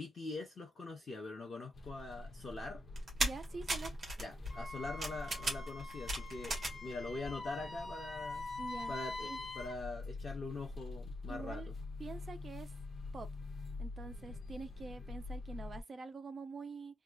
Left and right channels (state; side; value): normal; both; correlation 0.84